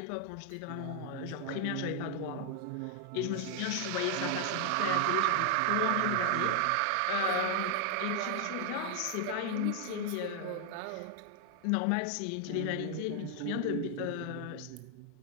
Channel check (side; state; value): both; different; correlation 0.00